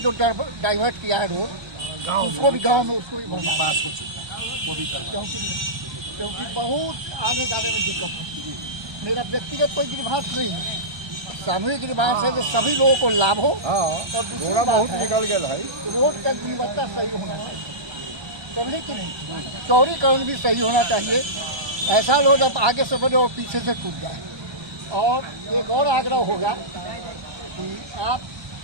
डाइवर्ट किया है रोड, उसको भी गांव में उसको भी पास हो चुका है, वो भी क्योंकि बहुत आने जाने में दिक्कत होती है। मेरा व्यक्तिगत कोई गिरभास नहीं है, सामूहिक गिरभास है जो सभी लोगों को लाभ हो। और दूसरा बहुत निकल गया है, रोड का गुणवत्ता सही होना चाहिए, करने की नहीं, चौड़ीकरण भी सही होना चाहिए। ऐसा रोड अब आगे से बने और पीछे से टूट जाए। और एक और आग्रह होगा कि आप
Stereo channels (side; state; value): left; late; 1.3 ms